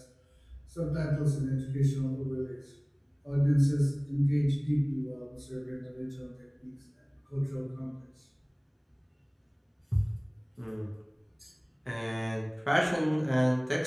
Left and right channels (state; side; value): identical; both; correlation 1.00